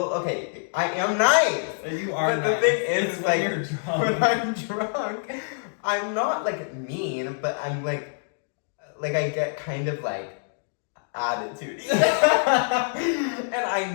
okay, I am nice. You are but nice. The thing is, it's like, when you're drunk. When I'm drunk, I'm not like mean, but I'm like I get kind of like attitude. And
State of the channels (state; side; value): silent; right; digital silence